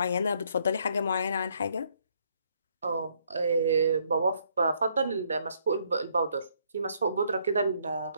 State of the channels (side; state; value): both; inverted; correlation -0.69